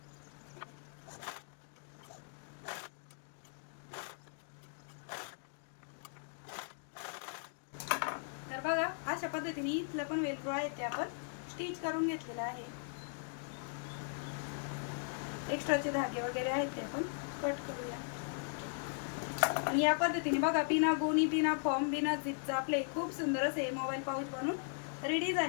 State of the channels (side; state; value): right; silent; digital silence